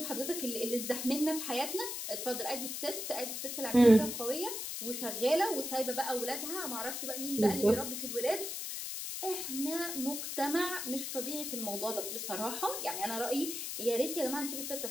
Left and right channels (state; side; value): noise; left; hiss, 4 dB below the sound